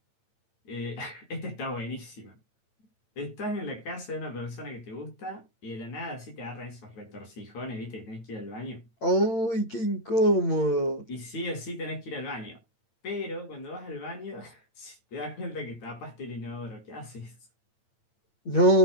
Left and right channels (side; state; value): right; late; 8.9 ms